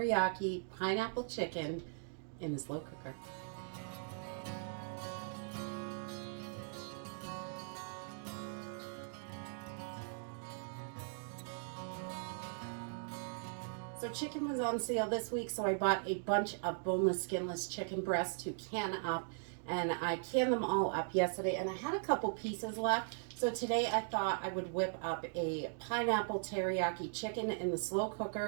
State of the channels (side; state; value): left; silent; digital silence